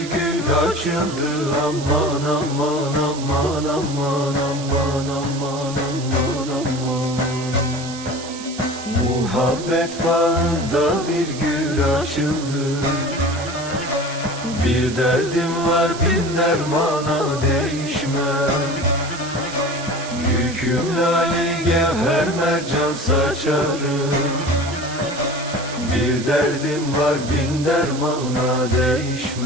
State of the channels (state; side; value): noise; right; hiss, 13 dB below the sound